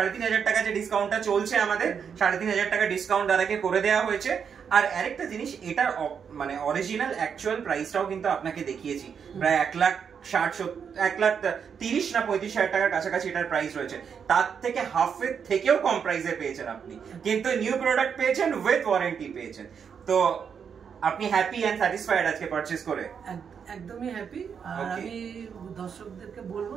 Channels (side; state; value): left; quieter; 7.0 dB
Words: টাকা যে ডিসকাউন্টটা চলছে আমাদের, 3,500 টাকা ডিসকাউন্ট দাদাকে করে দেওয়া হয়েছে। আর আরেকটা জিনিস, এটার মানে অরিজিনাল অ্যাকচুয়াল প্রাইসটাও কিন্তু আপনাকে দেখিয়েছি, প্রায় 1,30,000 না 35,000 টাকার কাছাকাছি এটার প্রাইস রয়েছে। তার থেকে হাফের থেকেও কম প্রাইসে পেয়েছেন আপনি, কিন্তু নিউ প্রোডাক্ট পেয়েছেন, উইথ ওয়ারেন্টি পেয়েছেন। তো আপনি হ্যাপি এন্ড স্যাটিসফাইড আজকে পারচেজ করে? একদমই হ্যাপি। আর আমি দর্শকদেরকে বলবো